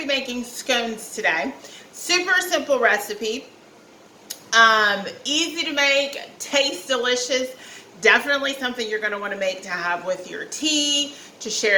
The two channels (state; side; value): identical; both; correlation 1.00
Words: be making scones today. Super simple recipe, easy to make, tastes delicious. Definitely something you're going to want to make to have with your tea, to